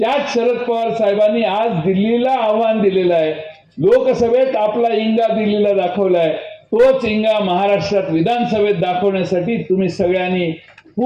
शरद पवार साहेबांनी आज दिल्लीला आव्हान दिलेलं आहे. लोकसभेत आपला इंगा दिल्लीला दाखवलाय, तोच इंगा महाराष्ट्रात विधानसभेत दाखवण्यासाठी तुम्ही सगळ्यांनी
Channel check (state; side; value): identical; both; correlation 1.00